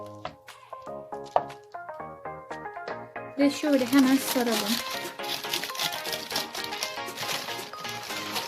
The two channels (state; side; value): identical; both; correlation 1.00